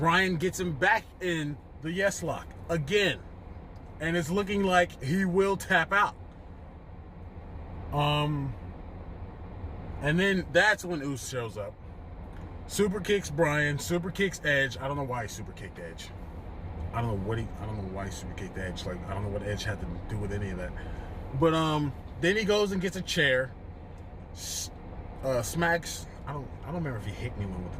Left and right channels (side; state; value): both; identical; correlation 1.00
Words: gets him back in the yes lock again, and it's looking like he will tap out. And then that's when Uso shows up. Super kicks Bryan, super kicks Edge. I don't know why he super kicked Edge. I don't know why he super kicked Edge. Like, I don't know what Edge had to do with any of that. But then he goes and gets a chair. Smacks. I don't remember if he hit anyone with the